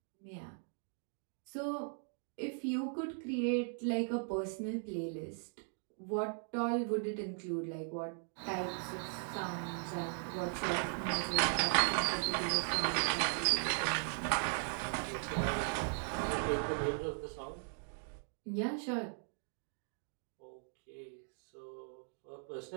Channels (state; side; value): silent; left; 52 dB below the other